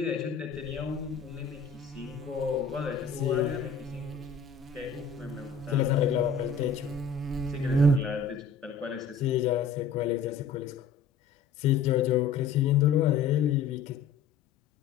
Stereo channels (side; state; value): right; quieter; 5.5 dB